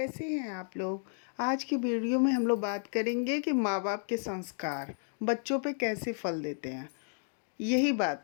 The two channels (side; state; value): right; silent; digital silence